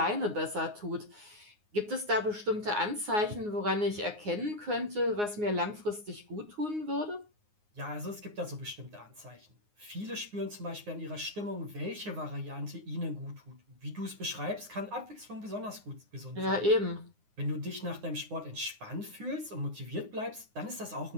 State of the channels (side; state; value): left; late; 9.6 ms